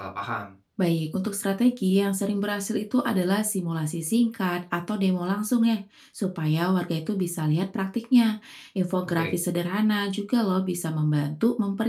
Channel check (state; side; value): identical; both; correlation 1.00